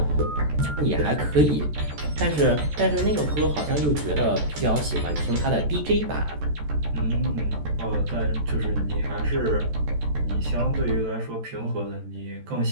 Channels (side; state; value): left; late; 14 ms